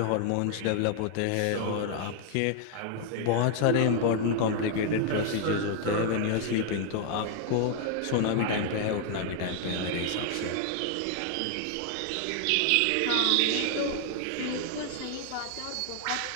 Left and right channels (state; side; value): different; both; correlation 0.00